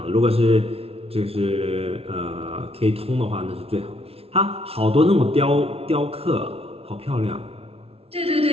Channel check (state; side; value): late; left; 0.28 ms